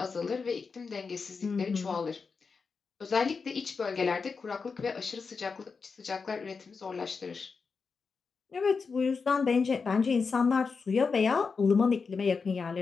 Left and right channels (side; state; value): right; quieter; 5.0 dB